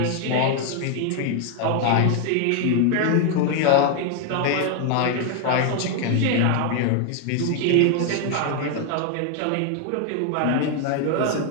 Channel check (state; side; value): different; both; correlation 0.00